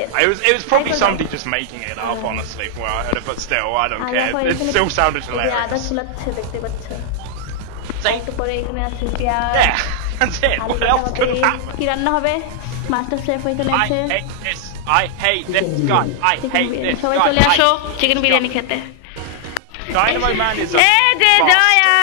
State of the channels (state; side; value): different; both; correlation 0.00